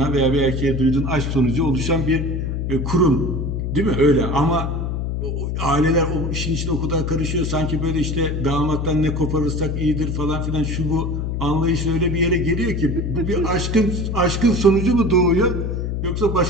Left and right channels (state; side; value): noise; left; hum, 2 dB below the sound